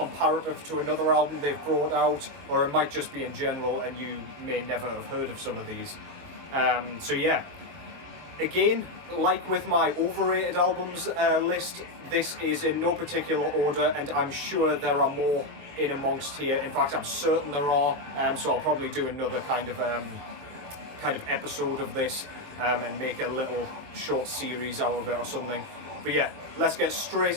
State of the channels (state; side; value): late; left; 22 ms